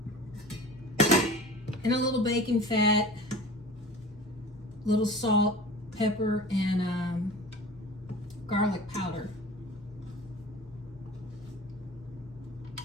in a little bacon fat, little salt, pepper, and garlic powder.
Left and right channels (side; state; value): both; normal; correlation 0.40